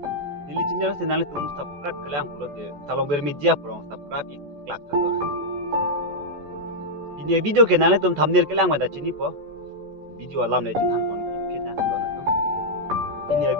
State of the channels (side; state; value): left; late; 14 ms